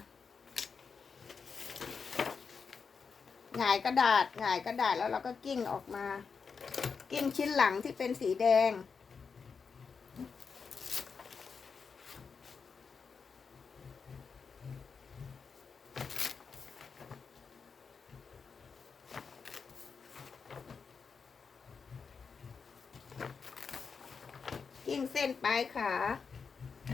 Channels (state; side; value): quieter; right; 5.5 dB